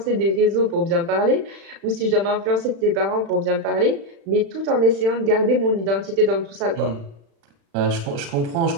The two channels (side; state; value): left; late; 36 ms